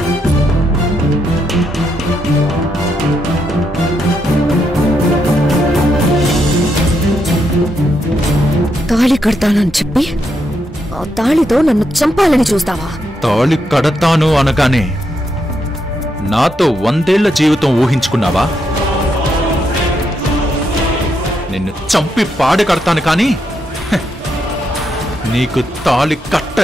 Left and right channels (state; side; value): normal; both; correlation 0.80